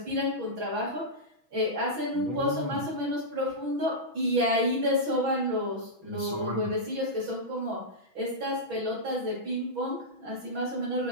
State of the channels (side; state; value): left; late; 6.1 ms